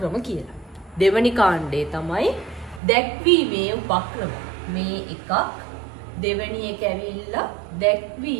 කියලා. දෙවනි කාණ්ඩේ තමයි දැක්වීමේ උපක්‍රම. මේ එකක් දෙවැනි එක ඇවිල්ලා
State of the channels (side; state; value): left; drops out; at 2.8 s